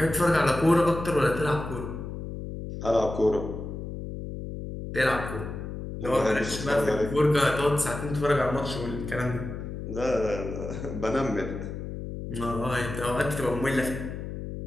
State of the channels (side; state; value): left; noise; hum, 7 dB below the sound